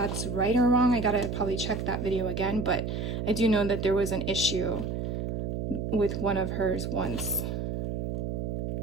right or wrong. I gotta probably check that video again, but I do know that there was an issue with one of hers once.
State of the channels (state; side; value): noise; right; hum, 2 dB below the sound